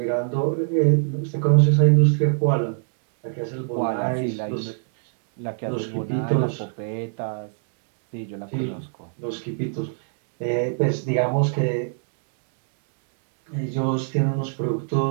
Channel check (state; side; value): silent; left; 63 dB below the other